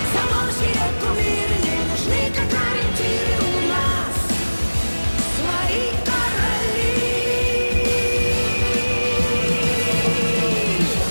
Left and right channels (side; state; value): both; inverted; correlation -1.00